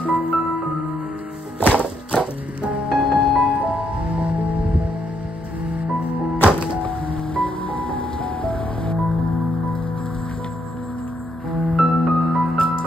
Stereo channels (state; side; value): normal; both; correlation 0.75